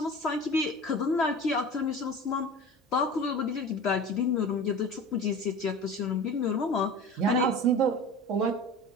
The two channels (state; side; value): normal; both; correlation 0.36